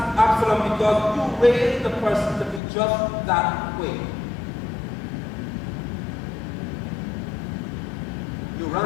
because you raised the person to be just that way. You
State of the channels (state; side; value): drops out; right; at 2.6 s